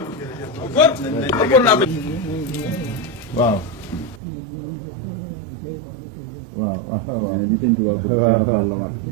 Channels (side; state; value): left; drops out; at 4.2 s